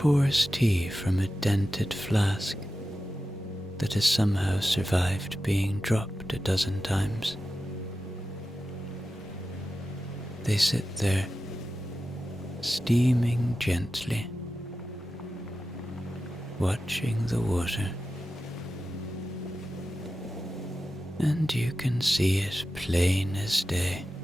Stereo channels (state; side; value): normal; both; correlation 0.93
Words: tea from a dented flask that has somehow survived being dropped a dozen times. They sit there, steaming gently, watching the water, and you can see it plain as day.